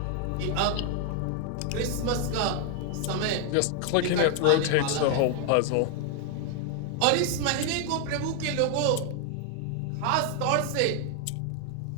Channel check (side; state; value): both; different; correlation 0.00